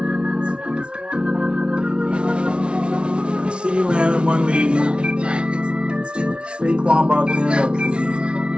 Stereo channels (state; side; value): late; left; 0.058 ms